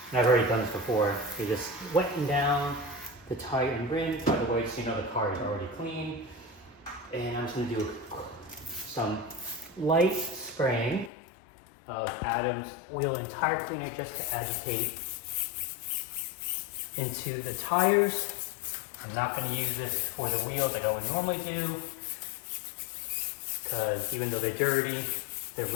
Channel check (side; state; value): right; drops out; at 11.1 s